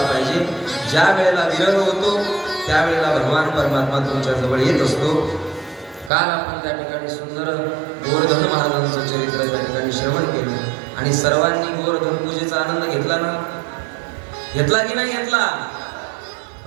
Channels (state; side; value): drops out; left; at 6.1 s